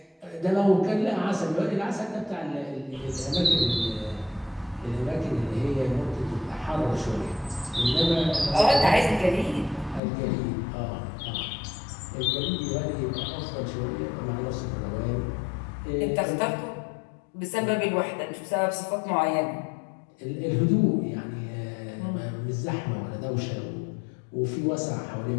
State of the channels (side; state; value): right; drops out; at 10.0 s